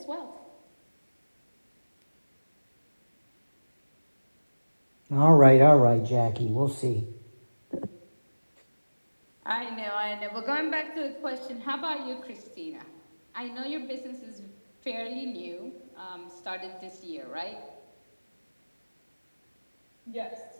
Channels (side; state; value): both; inverted; correlation -1.00